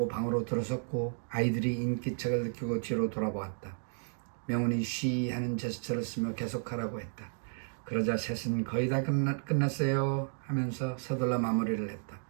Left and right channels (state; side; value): silent; left; digital silence